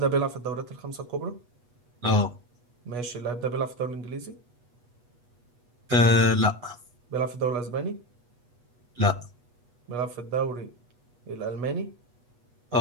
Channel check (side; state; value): left; late; 8.2 ms